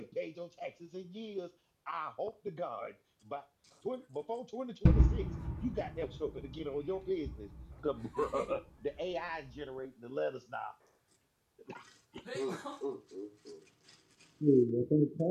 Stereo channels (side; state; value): both; identical; correlation 1.00